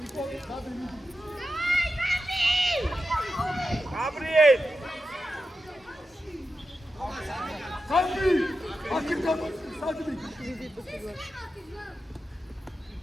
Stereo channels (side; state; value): both; normal; correlation 0.90